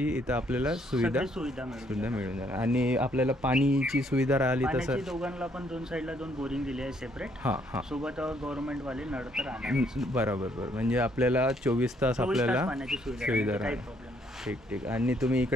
इथं आपल्याला सुविधा सुविधा मिळून जाणार. आणि आपल्याला पाणीची सुविधा राहिली तर पाण्याची सर? दोघांना पण 2 साईडला 2 बोरिंग दिली आहे सेपरेट. हां हां. सोबत गव्हर्नमेंटवाले नळ तर राहणार. बरोबर बरोबर. म्हणजे आपल्याला 24 तास आपल्याला पाण्याची सुविधा सुविधा काही राहणार. प्रॉब्लेम नाही. ठीक ठीक. आणि तुम्ही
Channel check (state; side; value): normal; both; correlation 0.69